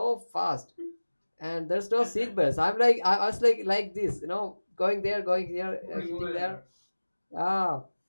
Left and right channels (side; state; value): both; inverted; correlation -1.00